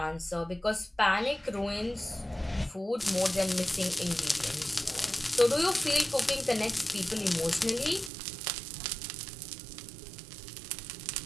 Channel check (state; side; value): drops out; left; at 8.1 s